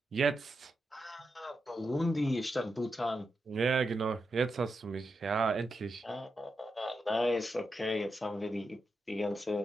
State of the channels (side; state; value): both; normal; correlation 0.87